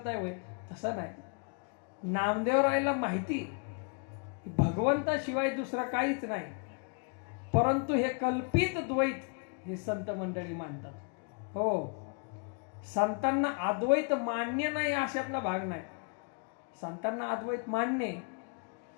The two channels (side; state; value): right; quieter; 38.4 dB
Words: होय, तसं नाही. नामदेवरायला माहिती भगवंताशिवाय दुसरं काहीच नाही, परंतु हे कल्पित द्वैत हे संत मंडळी मानतात. हो संतांना अद्वैत मान्य नाही अशातला भाग नाही. संतांना अद्वैत मान्य,